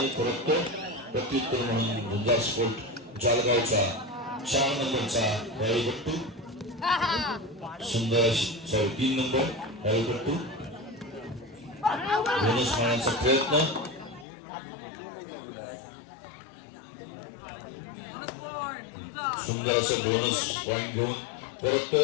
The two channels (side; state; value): right; drops out; at 14.2 s